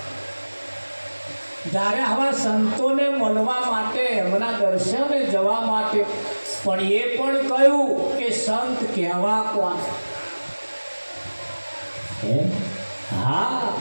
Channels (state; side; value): inverted; both; correlation -1.00